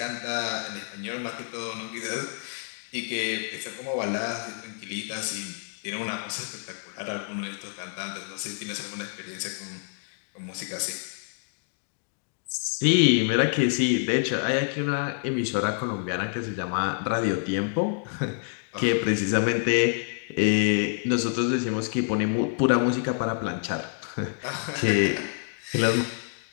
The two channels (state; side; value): silent; right; digital silence